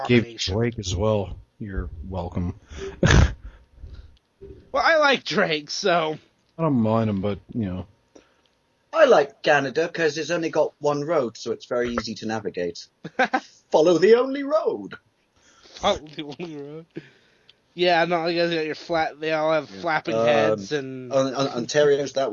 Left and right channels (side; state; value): both; identical; correlation 1.00